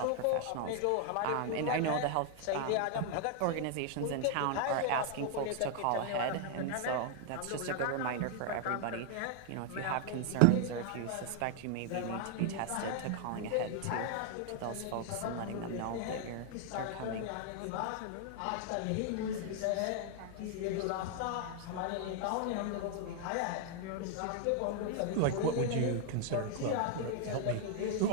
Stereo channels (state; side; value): different; both; correlation 0.00